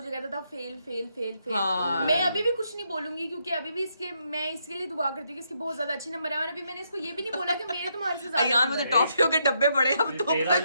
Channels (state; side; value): inverted; both; correlation -0.77